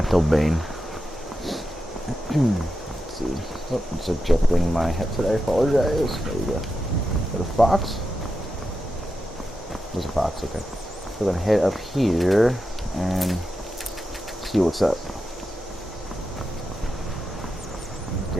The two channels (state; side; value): normal; both; correlation 0.89